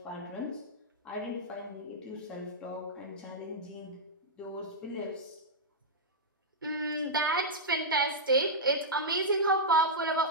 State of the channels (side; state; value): both; normal; correlation -0.08